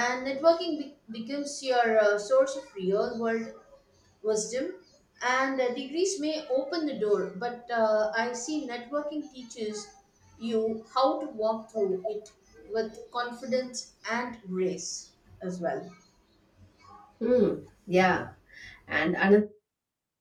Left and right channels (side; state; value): both; identical; correlation 1.00